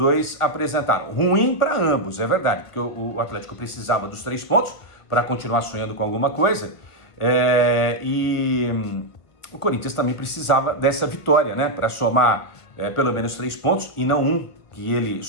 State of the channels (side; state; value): right; late; 1.6 ms